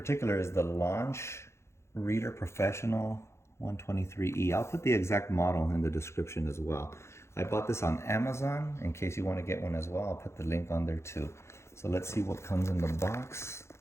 is the Launch Reader Professional 123E. I'll put the exact model in the description as well. I bought this on Amazon. In case you want to get one as well, I'll put the link on there too. So let's see what comes in the box.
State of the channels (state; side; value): late; right; 0.13 ms